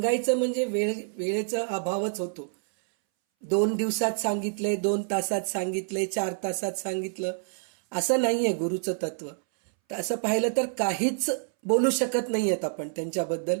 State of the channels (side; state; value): left; silent; 60 dB below the other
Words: म्हणजे वेळेचा अभावच होतो. 2 दिवसात सांगितले, 2 तासात सांगितले, 4 तासात सांगितलं, असं नाहीये गुरुचं तत्व. तर असं पाहिलं तर काहीच बोलू शकत नाहीयेत आपण त्यांच्याबद्दल.